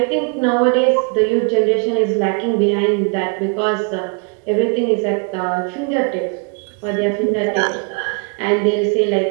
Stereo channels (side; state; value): left; quieter; 35.6 dB